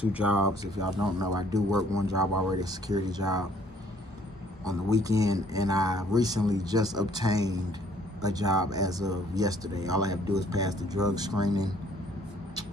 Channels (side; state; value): both; normal; correlation 0.60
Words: jobs. If y'all don't know, I do work one job already, a security job on the weekend, and I recently just obtained a job as of yesterday. All I have to do is pass the drug screening,